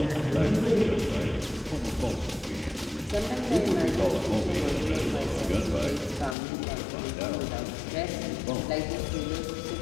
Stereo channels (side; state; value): right; drops out; at 6.4 s